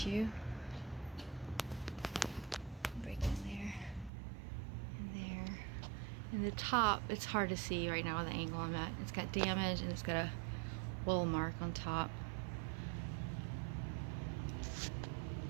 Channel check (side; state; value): left; drops out; at 4.1 s